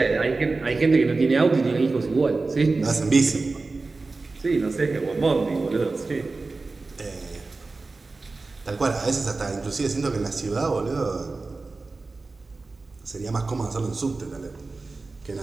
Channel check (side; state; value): left; quieter; 3.7 dB